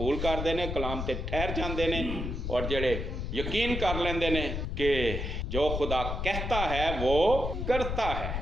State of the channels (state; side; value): noise; left; rumble, 3 dB below the sound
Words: ਕਰਦੇ ਨੇ ਕਲਾਮ ਤੇ ਠਹਿਰ ਜਾਂਦੇ ਨੇ ਔਰ ਜਿਹੜੇ ਯਕੀਨ ਕਰ ਲੈਂਦੇ ਨੇ ਕਿ ਜੋ ਖੁਦਾ कहता है वो करता